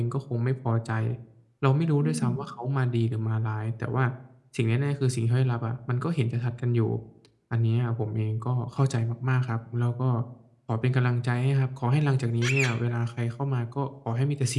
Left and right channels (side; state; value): both; identical; correlation 1.00